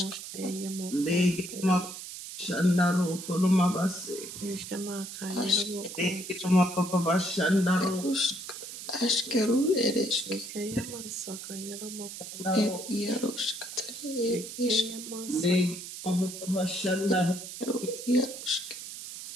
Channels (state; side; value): noise; right; hiss, 10 dB below the sound